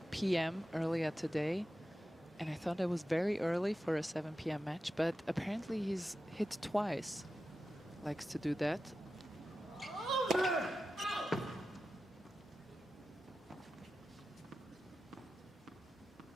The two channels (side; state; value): both; normal; correlation 0.92